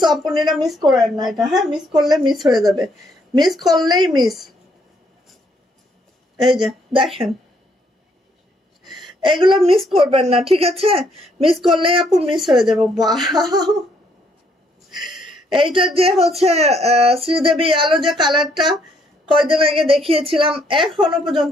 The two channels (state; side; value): normal; both; correlation 0.69